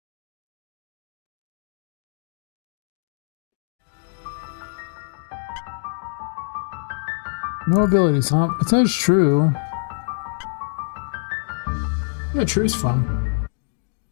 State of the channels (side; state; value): right; silent; digital silence